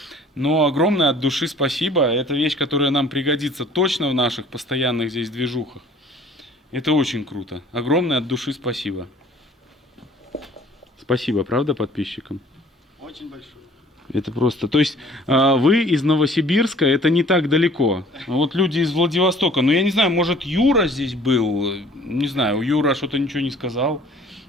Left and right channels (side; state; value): both; normal; correlation 0.52